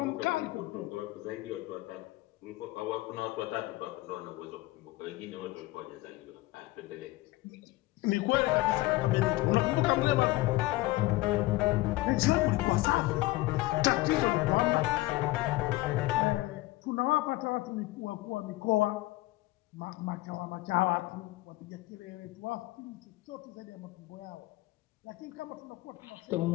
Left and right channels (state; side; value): quieter; right; 19.1 dB